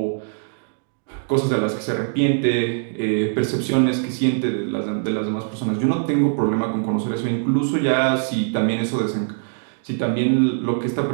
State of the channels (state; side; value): silent; left; digital silence